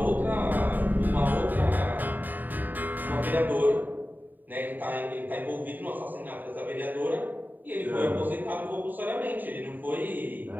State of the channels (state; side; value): late; left; 0.088 ms